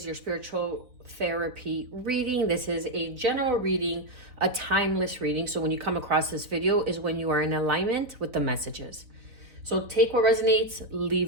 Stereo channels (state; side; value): late; left; 4.0 ms